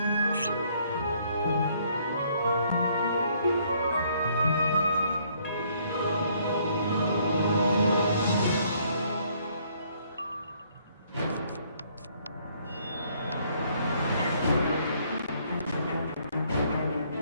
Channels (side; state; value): both; inverted; correlation -0.66